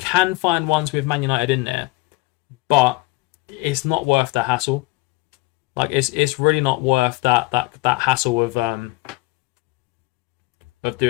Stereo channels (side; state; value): right; quieter; 21.4 dB